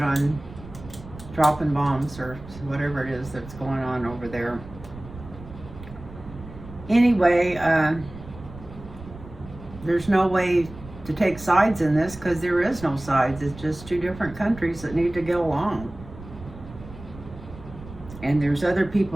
on dropping bombs or whatever it is that's going on over there. Anyway, there's no way to take sides in this, because there is no sides. It's just two different countries that need to get along. And there's other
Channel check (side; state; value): right; noise; rumble, 16 dB below the sound